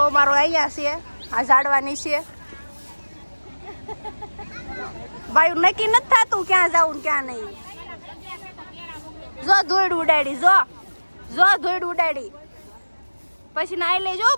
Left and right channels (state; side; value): inverted; both; correlation -1.00